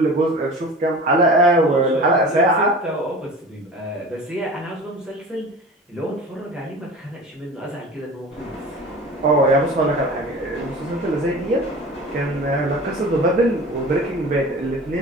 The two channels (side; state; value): both; normal; correlation 0.37